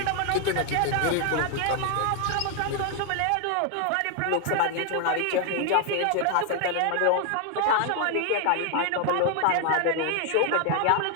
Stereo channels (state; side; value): different; both; correlation 0.00